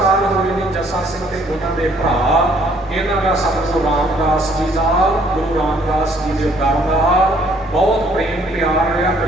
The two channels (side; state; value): both; normal; correlation 0.63